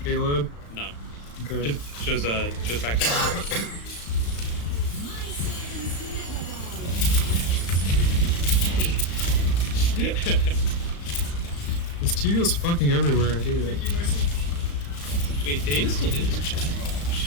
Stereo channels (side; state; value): right; late; 35 ms